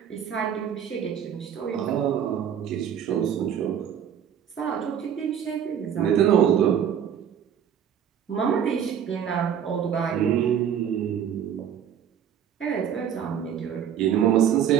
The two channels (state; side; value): quieter; left; 8.8 dB